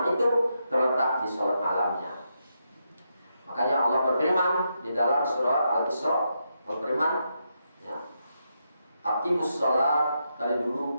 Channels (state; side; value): inverted; both; correlation -0.83